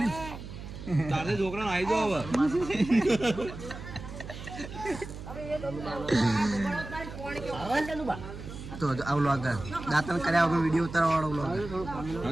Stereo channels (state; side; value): noise; right; hum, 11 dB below the sound